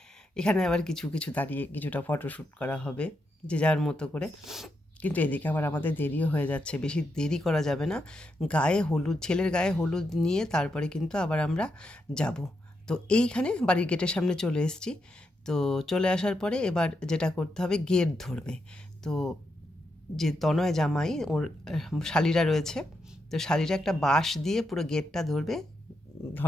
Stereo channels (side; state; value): both; normal; correlation 0.83